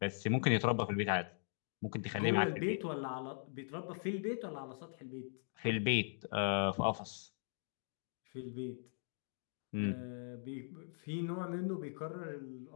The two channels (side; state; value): right; silent; digital silence